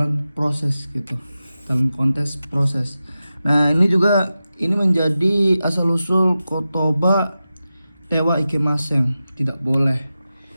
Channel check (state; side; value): inverted; both; correlation -0.93